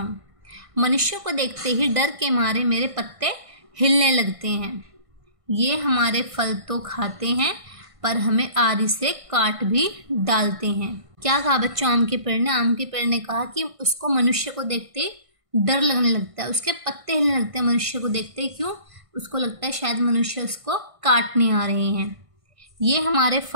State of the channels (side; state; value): left; late; 1.5 ms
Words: मनुष्यों को देखते ही डर के मारे मेरे पत्ते हिलने लगते हैं। ये हमारे फल तो खाते हैं, पर हमें आरी से काट भी डालते हैं। क्या कहा बच्चों आम के पेड़ ने? आम के पेड़ ने कहा कि उसको मनुष्य को देखते डर लगने लगता है, उसके पत्ते हिलने लगते हैं मनुष्य को देखते। क्यों? उसको लगता है शायद मनुष्य उसको काटने आ रहे हैं। ये हमारे